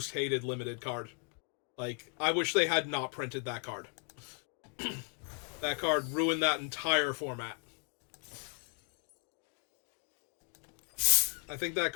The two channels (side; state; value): right; quieter; 38.3 dB